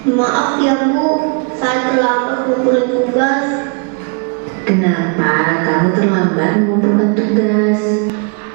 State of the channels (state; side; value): quieter; left; 37.0 dB